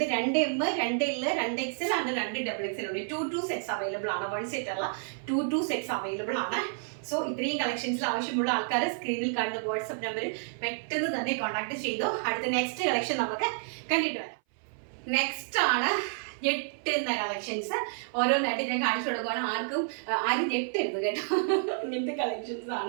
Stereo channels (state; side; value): silent; left; 58 dB below the other